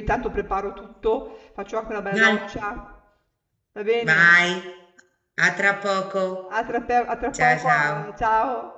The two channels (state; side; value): identical; both; correlation 1.00